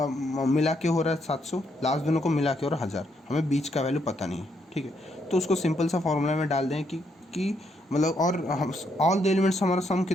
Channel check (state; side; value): normal; both; correlation 0.75